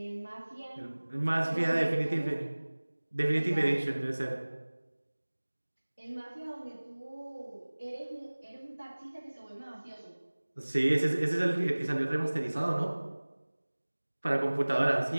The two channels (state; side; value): inverted; both; correlation -1.00